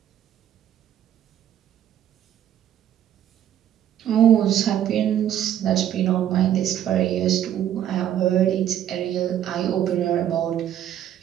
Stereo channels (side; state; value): left; quieter; 10.7 dB